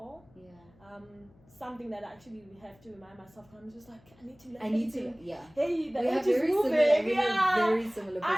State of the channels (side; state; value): left; noise; hum, 29 dB below the sound